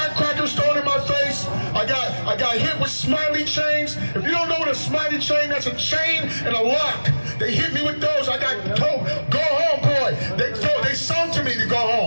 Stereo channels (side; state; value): both; inverted; correlation -1.00